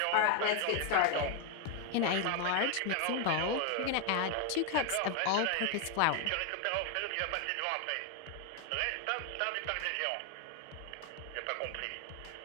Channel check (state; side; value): different; both; correlation 0.01